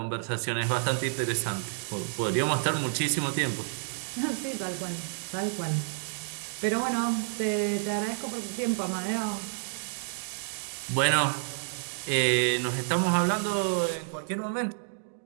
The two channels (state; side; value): silent; left; digital silence